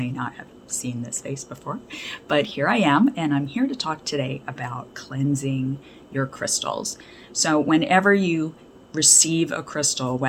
not have seen this face before, but here I am and I'm here to talk today about cleansing your crystals. So whenever you receive a crystal,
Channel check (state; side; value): identical; both; correlation 1.00